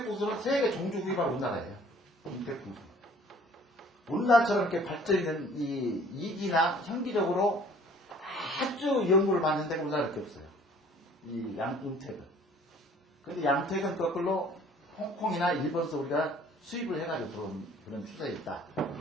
풍수는 세계 종주 구입할 우리나라예요. 음택 풍수. 우리나라처럼 이렇게 발전이 된 이 이기나 현기적으로 아주 연구를 받는 데가 우리나라밖에 없어요. 이 음택은. 근데 양택은 거꾸로 홍콩이나 일본에서 우리가 수입을 해가지고 들어온 그런 추세에 있다.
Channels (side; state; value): both; normal; correlation 0.54